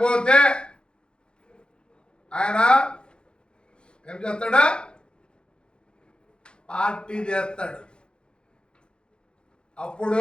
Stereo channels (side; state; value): right; late; 0.052 ms